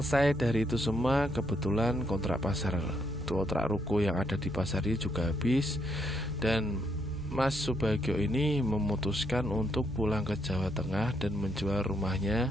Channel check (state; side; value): normal; both; correlation 0.75